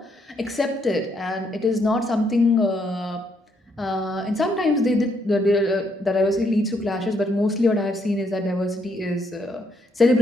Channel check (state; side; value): normal; both; correlation 0.74